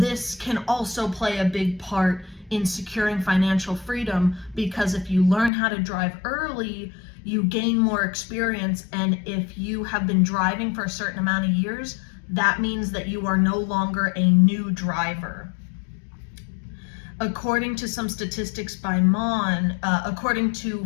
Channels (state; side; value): drops out; right; at 5.5 s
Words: can also play a big part in securing financial freedom, because if you learn how to drive early, you gain more experience, and if you have been driving for a certain amount of years, that means that you are no longer a new driver. According to some statistics by according to